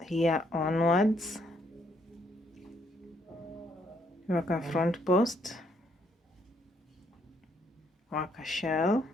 here onwards. Work a front post, work a shell,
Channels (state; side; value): normal; both; correlation 0.71